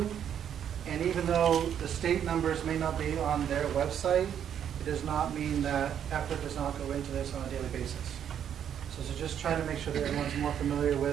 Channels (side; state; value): left; quieter; 9.1 dB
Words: and even though the state numbers may not be on their website, it does not mean that effort does not go into this on a daily basis. So just trying to make sure that everyone's more familiar